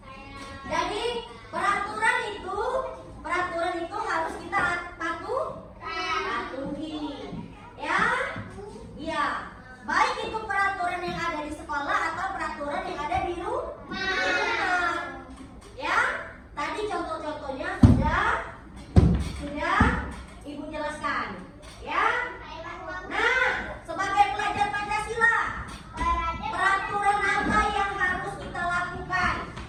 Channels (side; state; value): both; identical; correlation 1.00